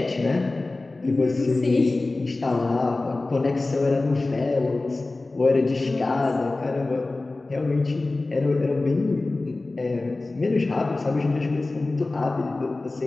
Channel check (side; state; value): right; quieter; 3.2 dB